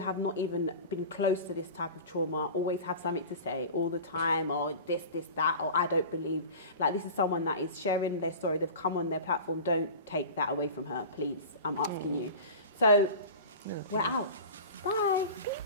not even been close to this type of trauma always have something to say all the time, or this, that, or I don't believe. Like, this is someone that is sharing their story. They've come on their platform. Don't take that away from her, please. I'm asking you. So we're out. Bye.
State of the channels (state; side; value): inverted; both; correlation -0.34